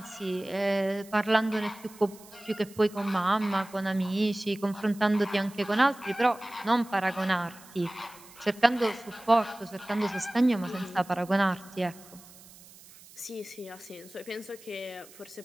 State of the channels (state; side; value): noise; right; hiss, 22 dB below the sound